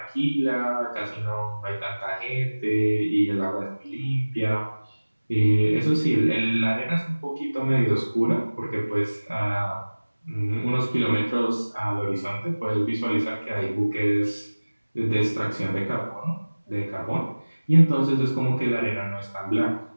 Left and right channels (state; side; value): inverted; both; correlation -1.00